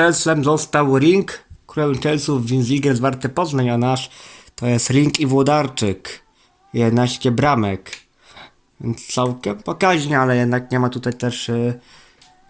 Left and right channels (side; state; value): both; identical; correlation 1.00